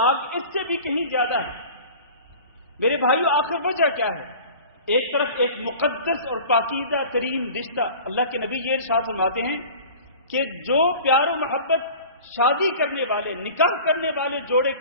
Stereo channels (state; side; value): inverted; both; correlation -0.41